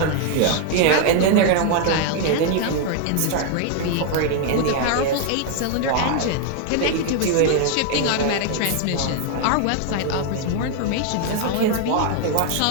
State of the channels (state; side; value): different; both; correlation 0.00